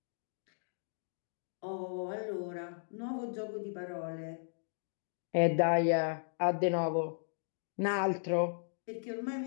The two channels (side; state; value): right; silent; digital silence